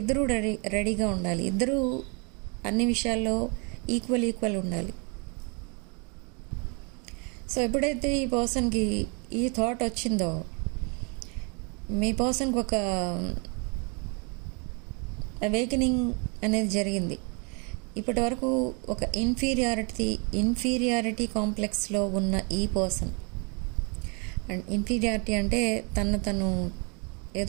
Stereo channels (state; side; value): quieter; left; 34.2 dB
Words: రెడీగా ఉండాలి, ఇద్దరూ అన్ని విషయాల్లో ఈక్వల్ ఉండాలి. సో ఎప్పుడైతే ఈ పర్సన్కి ఈ థాట్ వచ్చిందో, మీ పర్సన్కి ఒక అవేకనింగ్ అనేది జరిగింది. ఇప్పటి వరకు ఒక ఇన్ఫీరియారిటీ కాంప్లెక్స్లో ఉన్న ఈ పర్సన్, అండ్ ఇన్ఫీరియారిటీ అంటే తను